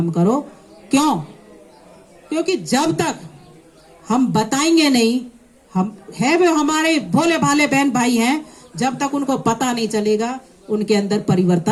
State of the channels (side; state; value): both; identical; correlation 1.00